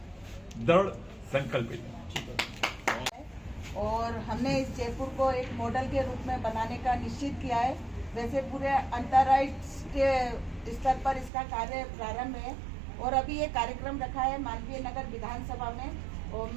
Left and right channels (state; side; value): drops out; left; at 11.3 s